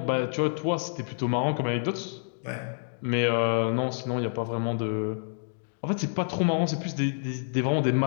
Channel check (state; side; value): silent; right; digital silence